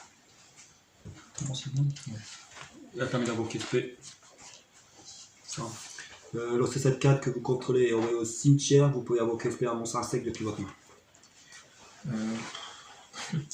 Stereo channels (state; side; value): identical; both; correlation 1.00